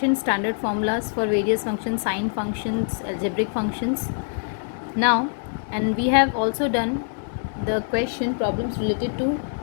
standard formulas for various functions, sine functions, algebraic functions. Now, and we have also done the question problems related to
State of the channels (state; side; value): silent; right; digital silence